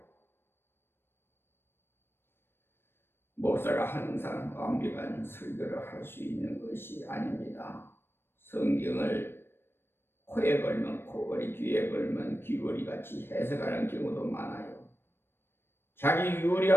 목사가 항상 완벽한 설교를 할 수 있는 것이 아닙니다. 성경을 코에 걸면 코걸이, 귀에 걸면 귀걸이 같이 해석하는 경우도 많아요. 자기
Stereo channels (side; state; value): right; late; 0.11 ms